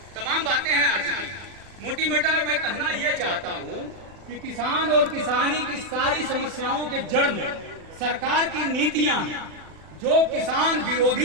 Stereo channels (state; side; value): late; left; 40 ms